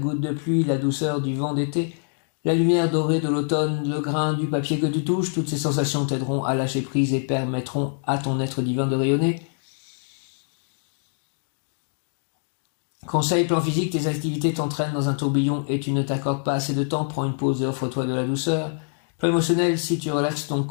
de pluie, la douceur du vent d'été, la lumière dorée de l'automne, le grain du papier que tu touches, toutes ces sensations t'aideront à lâcher prise et permettront à ton être divin de rayonner. Conseil plan physique, tes activités t'entraînent dans un tourbillon et tu ne t'accordes pas assez de temps, prends une pause et offre-toi de la douceur. Plan émotionnel, si tu relaxes ton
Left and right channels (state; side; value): silent; right; digital silence